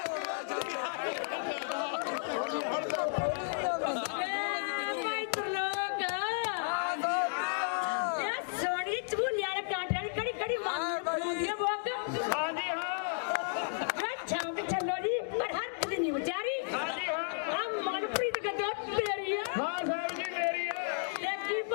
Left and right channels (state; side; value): silent; right; digital silence